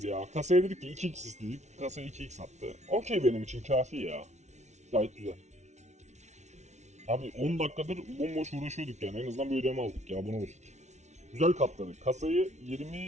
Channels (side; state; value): left; late; 0.33 ms